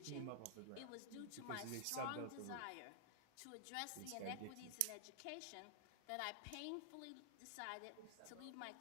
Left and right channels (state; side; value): different; both; correlation 0.00